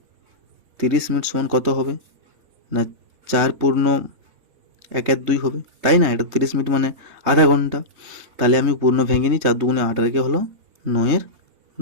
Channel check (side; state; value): left; late; 3.2 ms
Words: 30 মিনিট সমান কত হবে না? 4 পূর্ণ 1/2 হবে, তাই না? এটা 30 মিনিট মানে আধা ঘন্টা। তাহলে আমি পূর্ণ ভেঙে নিই, 4 দুগুণে 8 রেখে হলো